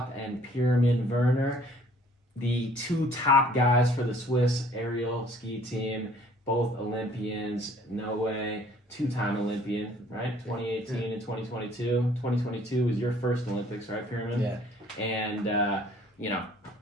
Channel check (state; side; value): normal; both; correlation 0.57